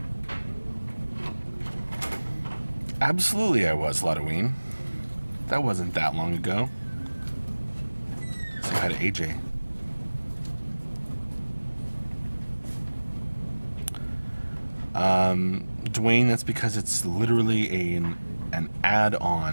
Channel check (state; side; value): inverted; both; correlation -1.00